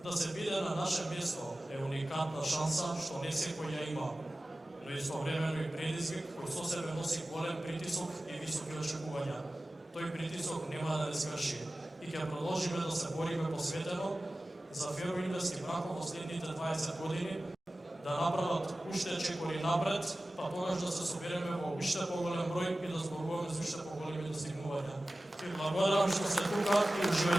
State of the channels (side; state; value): both; normal; correlation 0.96